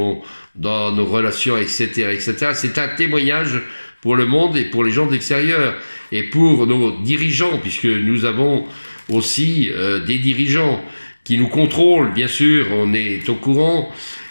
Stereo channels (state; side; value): inverted; both; correlation -1.00